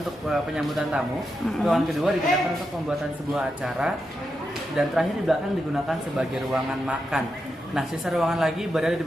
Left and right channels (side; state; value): both; normal; correlation 0.86